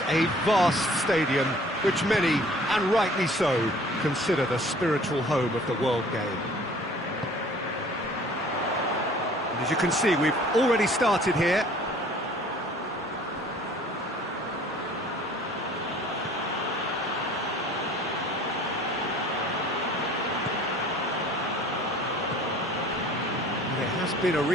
a vast stadium, which many, and rightly so, consider the spiritual home of the world game. And as you can see, we've already started here. There has been a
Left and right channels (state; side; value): normal; both; correlation 0.51